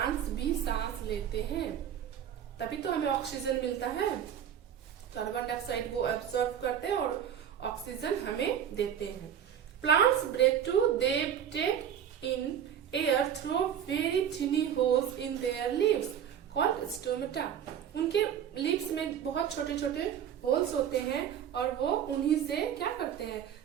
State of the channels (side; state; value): left; quieter; 9.1 dB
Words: भी सांस लेते हैं, तभी तो हमें ऑक्सीजन मिलता है। कार्बन डाइऑक्साइड वो एब्सॉर्ब करते हैं और ऑक्सीजन हमें देते हैं। Plants breathe too. They take in air through very tiny holes in their leaves called stomata. उनके लीव्स में बहुत छोटे छोटे होल्स होते हैं, और वो उन्हीं से क्या करते हैं?